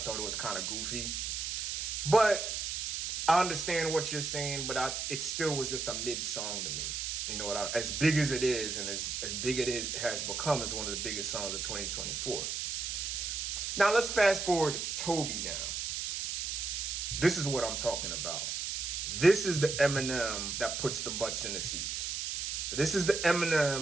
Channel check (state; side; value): noise; right; hiss, 2 dB below the sound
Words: it was kind of goofy. But I understand what you're saying, but it still was just a mid song to me. As big as it is, and as big it has become as one of the biggest songs of 2024. Now let's fast forward to Tobey now. This is what I'm talking about. This is the Eminem that puts the butts in the seats. This is the